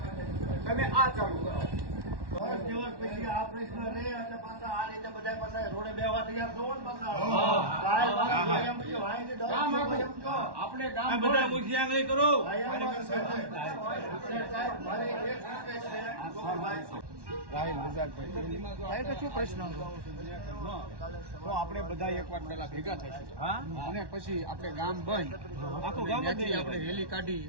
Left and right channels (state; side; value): late; left; 1.1 ms